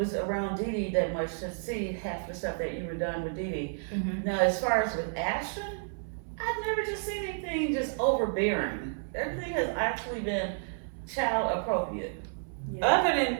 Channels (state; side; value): silent; left; 57 dB below the other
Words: around Dee Dee that much to see half the stuff that you were done with Dee Dee. Now, as far as with Ashton, I've never just seen anything just overbearing. Everything has actually been child appropriate. Other